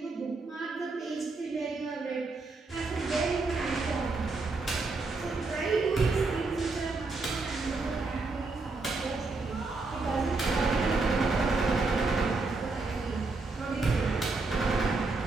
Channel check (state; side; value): quieter; left; 3.7 dB